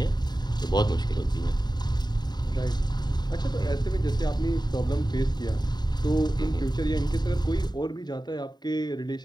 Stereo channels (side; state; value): right; late; 0.20 ms